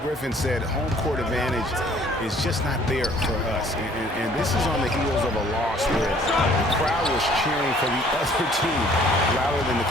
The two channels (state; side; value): normal; both; correlation 0.57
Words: Griffin said home court advantage is just not there for us. And this is on the heels of a loss where the crowd was cheering for the other team louder than the